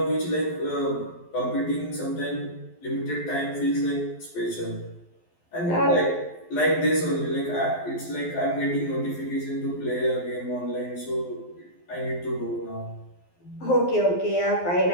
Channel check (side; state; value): right; late; 12 ms